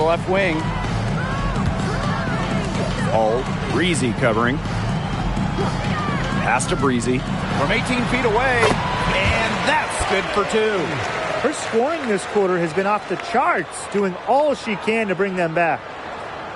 wing. All Breezy covering. Pass to Breezy. From 18 feet away. And that's good for 2. Her scoring this quarter has been off the charts, doing all she can to bring them back.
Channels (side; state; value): both; identical; correlation 1.00